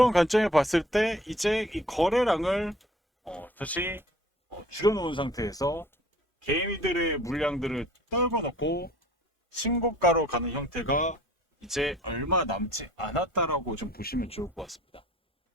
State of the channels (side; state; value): both; normal; correlation 0.52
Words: 관점에 봤을 때 이제 이 거래량을 다시 줄여놓은 상태에서 개미들의 물량들을 떨궈놓고 신고가로 가는 형태가 이제 얼마 남지 않았다라고 좀 보시면 좋을 것 같습니다.